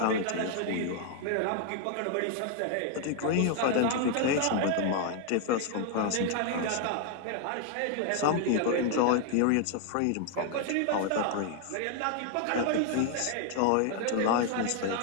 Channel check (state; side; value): different; both; correlation 0.00